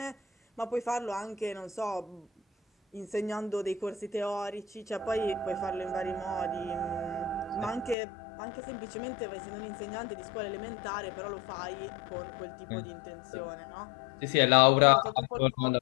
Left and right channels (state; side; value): drops out; right; at 8.0 s